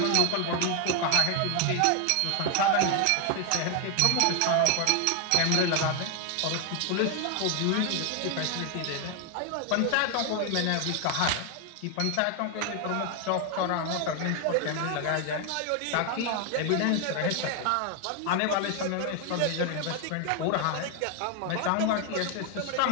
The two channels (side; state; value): both; different; correlation 0.01